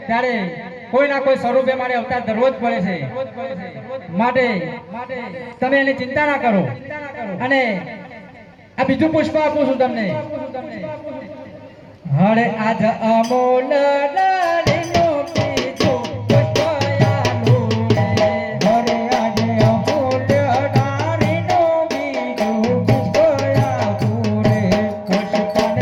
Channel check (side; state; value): both; identical; correlation 1.00